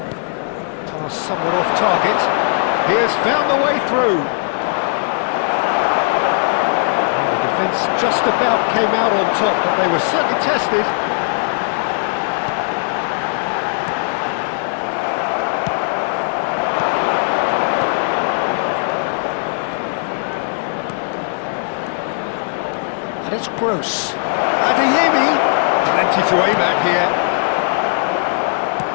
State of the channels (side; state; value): right; silent; digital silence